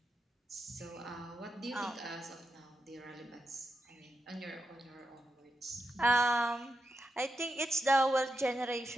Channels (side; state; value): both; normal; correlation 0.86